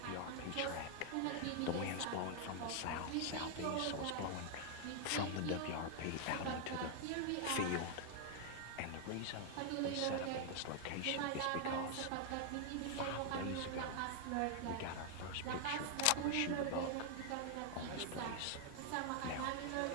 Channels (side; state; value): both; different; correlation 0.00